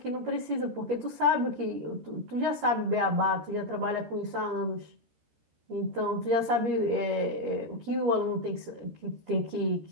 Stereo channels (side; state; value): left; late; 13 ms